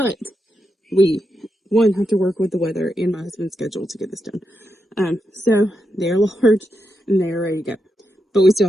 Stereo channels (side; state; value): both; normal; correlation 0.85